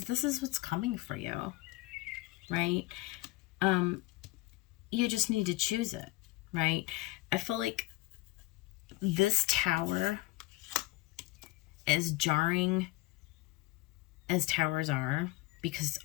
this is what's coming for you, right? You just need to choose it, right? I feel like this Tower, as jarring as towers are, because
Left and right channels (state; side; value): quieter; right; 19.9 dB